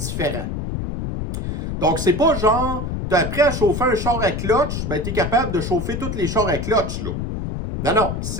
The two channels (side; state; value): left; noise; rumble, 4 dB below the sound